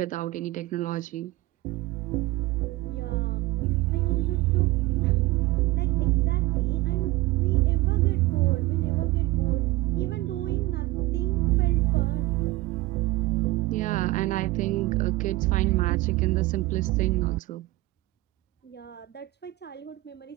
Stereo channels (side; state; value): left; quieter; 19.5 dB